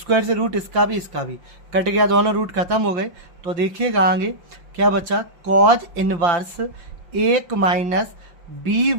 से रूट इसका भी, इसका भी कट गया, दोनों रूट खत्म हो गए। तो देखिएगा आगे क्या बचा? कॉज इनवर्स 1 माइनस बी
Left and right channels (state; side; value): late; left; 5.8 ms